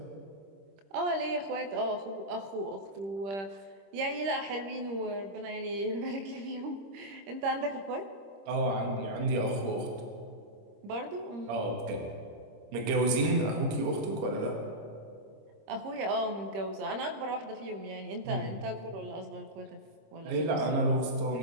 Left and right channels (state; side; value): late; left; 26 ms